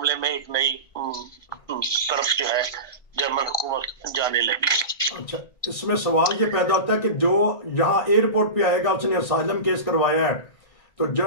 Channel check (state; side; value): late; right; 1.7 ms